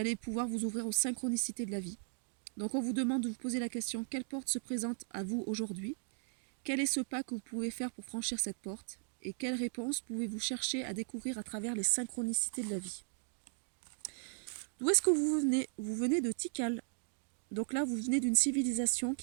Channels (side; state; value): left; silent; 53 dB below the other